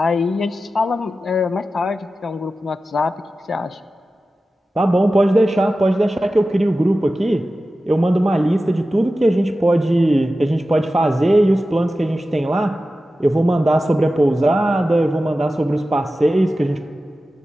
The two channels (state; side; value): normal; both; correlation 0.94